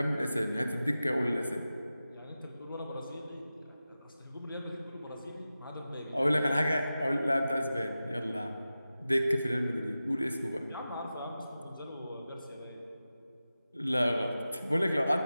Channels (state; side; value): inverted; both; correlation -0.94